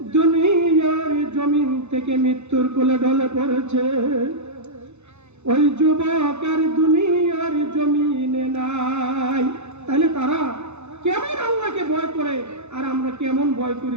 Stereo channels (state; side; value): late; left; 0.81 ms